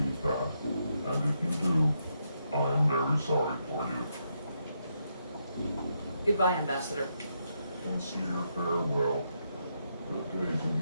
that, and if you do, I am very sorry for you. Goodbye, Ambassador. Sincere farewell. Good day to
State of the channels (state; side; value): inverted; both; correlation -0.80